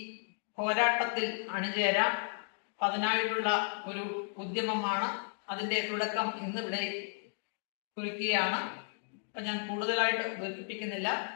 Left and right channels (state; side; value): silent; right; 55 dB below the other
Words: പോരാട്ടത്തിൽ അണിചേരാം. അതിനായിട്ടുള്ള ഒരു ഉദ്യമമാണ്. അതിന്റെ തുടക്കം ഇന്നിവിടെ കുറിക്കുകയാണ്. അപ്പൊ ഞാൻ കൂടുതലായിട്ട് ദീർഘിപ്പിക്കുന്നില്ല,